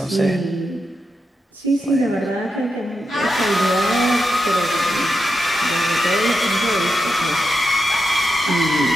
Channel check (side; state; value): both; normal; correlation 0.87